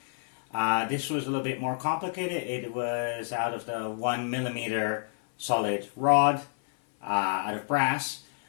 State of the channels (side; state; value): right; silent; 59 dB below the other